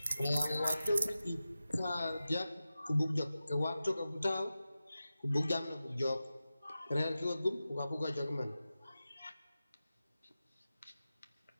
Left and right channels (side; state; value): both; inverted; correlation -0.93